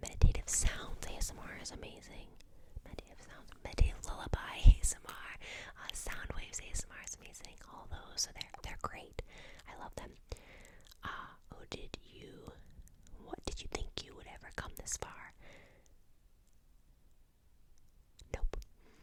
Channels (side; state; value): both; identical; correlation 1.00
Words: Meditative Sounds ASMR is amazing. Meditative Lullaby ASMR. Sound Waves ASMR is amazing. All those, so they're great. I love them. What did you think you would ever come this far? Nope,